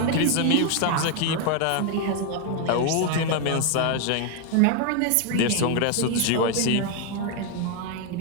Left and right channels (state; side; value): different; both; correlation 0.01